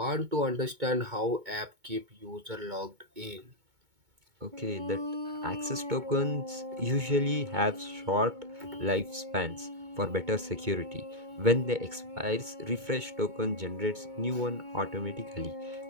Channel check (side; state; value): left; late; 2.2 ms